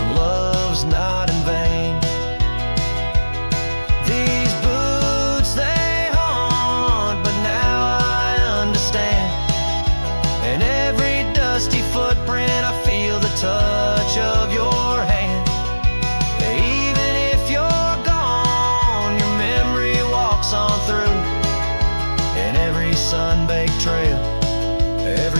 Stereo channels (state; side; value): inverted; both; correlation -1.00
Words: love's not in vain. These boots, they haunt, but now I understand. And every dusty footprint, I feel the touch of your hand. Even if you're gone, your memory walks on through. And every sun-baked trail,